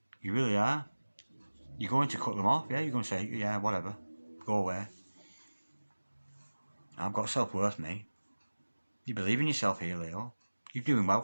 You really are. You're going to cut them off, yeah? You're going to say, yeah, whatever, go away. I've got self-worth, mate. You believe in yourself here, Leo. You're doing well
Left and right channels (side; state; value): both; inverted; correlation -1.00